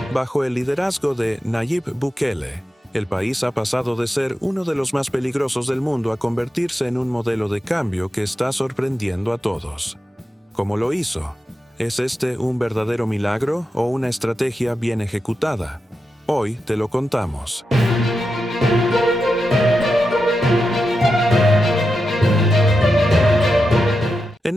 Bajo el liderazgo de Nayib Bukele, el país ha pasado de ser uno de los más peligrosos del mundo a convertirse en un modelo de cambio que está sorprendiendo a todos. ¿Cómo lo hizo? ¿Es este un verdadero milagro o una estrategia bien ejecutada? Hoy te lo contamos. En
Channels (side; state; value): both; normal; correlation 0.89